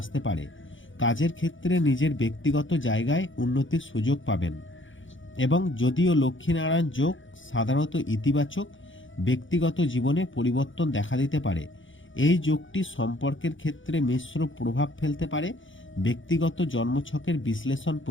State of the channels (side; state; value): right; late; 0.56 ms